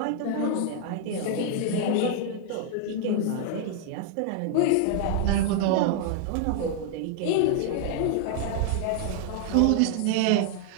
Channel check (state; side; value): different; both; correlation 0.00